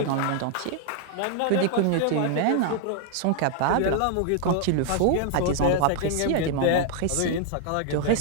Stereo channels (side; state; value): both; different; correlation 0.00